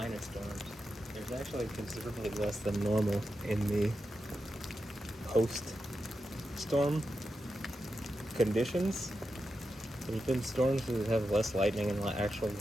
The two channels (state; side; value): normal; both; correlation 0.89